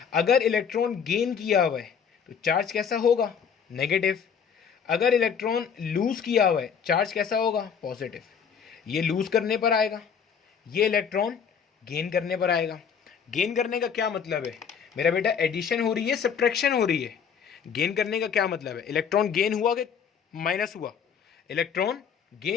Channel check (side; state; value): right; quieter; 7.1 dB